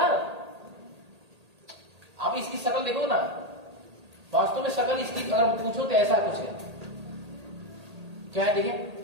आप इसकी शक्ल देखो ना, वास्तव में शक्ल इसकी अगर पूछो तो ऐसा कुछ है, क्या है देखिए,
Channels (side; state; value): left; late; 1.8 ms